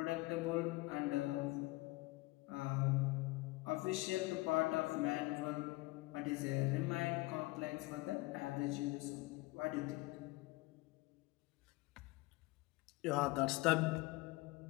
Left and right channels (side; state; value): right; quieter; 21.7 dB